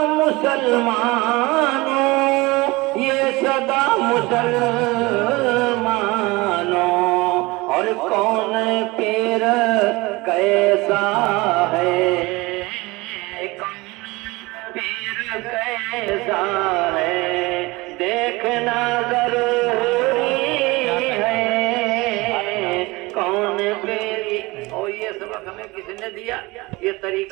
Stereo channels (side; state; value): left; quieter; 22.7 dB